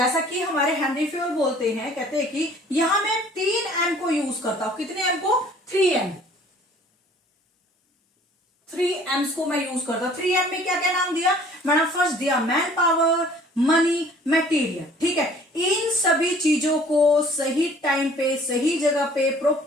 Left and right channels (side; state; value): both; normal; correlation 0.53